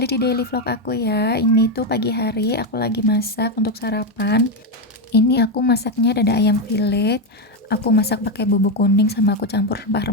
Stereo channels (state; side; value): normal; both; correlation 0.07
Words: di daily vlog aku ya. Ini tuh pagi hari aku lagi masak untuk sarapan. Ini aku masaknya dada ayam fillet. Aku masak pakai bumbu kuning sama aku campur